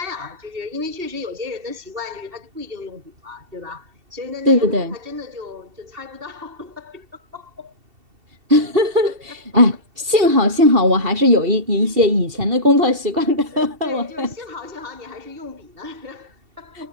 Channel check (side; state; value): left; late; 2.7 ms